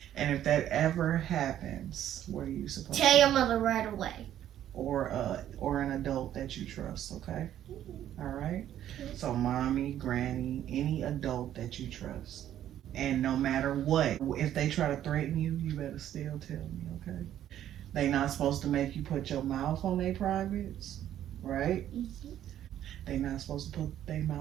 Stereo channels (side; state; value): left; quieter; 11.4 dB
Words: And if that ever happens, what are you supposed Tell to your do? mother right away. Or an adult that you trust, okay? All right? So mommy, granny, any adult that you trust. And no matter what, if they try to threaten you, you better still tell me, okay? They not supposed to make you put your mouth on their privates, right? They not supposed to put their